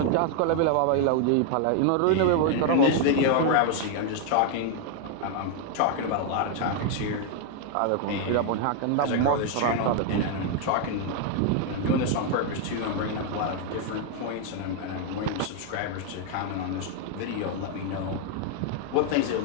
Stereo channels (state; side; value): different; both; correlation 0.00